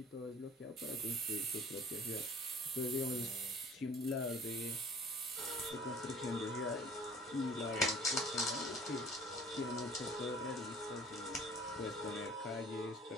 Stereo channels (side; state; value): both; normal; correlation 0.49